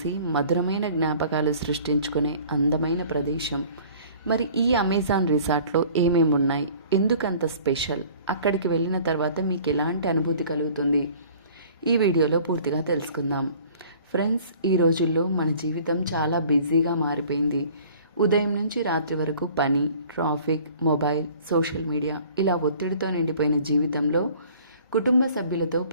మధురమైన జ్ఞాపకాలు సృష్టించుకునే అందమైన ప్రదేశం. మరి ఈ అమెజాన్ రిసార్ట్లో ఏమేమి ఉన్నాయి, ఎందుకంత స్పెషల్, అక్కడికి వెళ్ళిన తర్వాత మీకు ఎలాంటి అనుభూతి కలుగుతుంది, ఈ వీడియోలో పూర్తిగా తెలుసుకుందాం. ఫ్రెండ్స్, ఈ రోజుల్లో మన జీవితం చాలా బిజీగా మారిపోయింది. ఉదయం నుంచి రాత్రి వరకు పని, ట్రాఫిక్, మొబైల్, సోషల్ మీడియా ఇలా ఒత్తిడితో నిండిపోయిన జీవితంలో కుటుంబ సభ్యులతో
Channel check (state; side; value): inverted; both; correlation -0.50